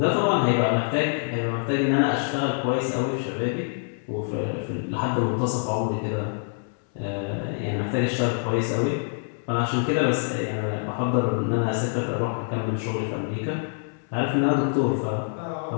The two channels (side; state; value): right; silent; 61 dB below the other